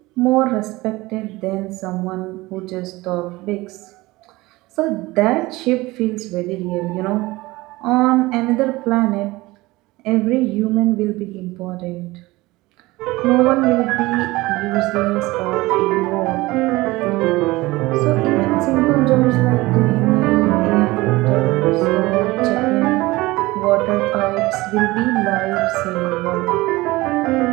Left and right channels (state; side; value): quieter; left; 20.3 dB